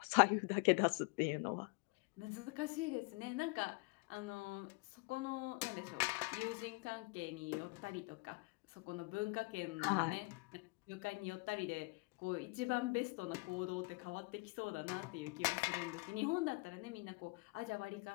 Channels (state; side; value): quieter; right; 27.5 dB